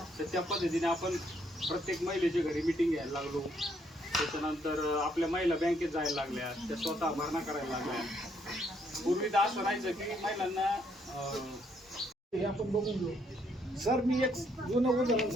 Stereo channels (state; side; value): normal; both; correlation 0.71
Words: तर त्या पद्धतीने आपण प्रत्येक महिलेच्या घरी मिटिंग घ्यायला लागलो. त्याच्यानंतर आपल्या महिला बँकेत जायला लागल्या, त्या स्वतः भरणा करायला लागल्या. पूर्वी तर असं राहायचं की महिलांना हे आपण बघून घेऊ. सर मी एक जुनं उदाहरण